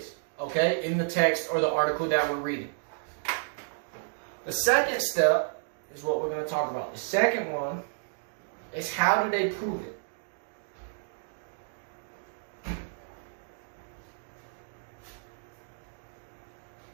okay, in the text or the article that we're reading. The second step is what we're going to talk about. The second one is how do they prove it?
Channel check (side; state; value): left; silent; digital silence